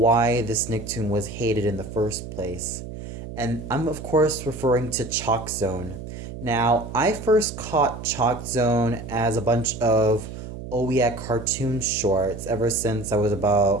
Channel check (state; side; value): noise; right; hum, 10 dB below the sound